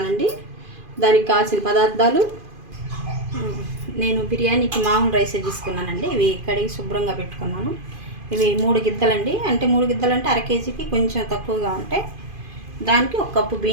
దానికి కావాల్సిన పదార్థాలు, నేను బిర్యానీకి మామూలు రైసే తీసుకున్నానండి. ఇవి కడిగి శుభ్రంగా పెట్టుకున్నాను. ఇవి 3 గిద్దలండి. అంటే 3 గిద్దలు అంటే అర కేజీకి కొంచెం తక్కువగా ఉంటాయి. దానికి 1 కప్పు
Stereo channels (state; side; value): late; left; 2.5 ms